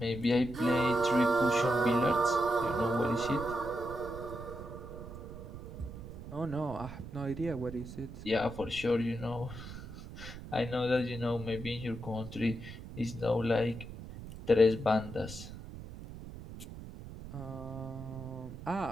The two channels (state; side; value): noise; right; rumble, 12 dB below the sound